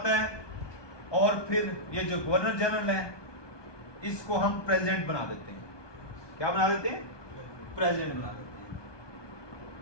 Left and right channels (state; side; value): late; right; 1.2 ms